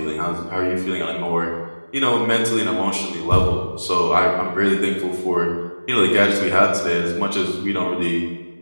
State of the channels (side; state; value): both; inverted; correlation -1.00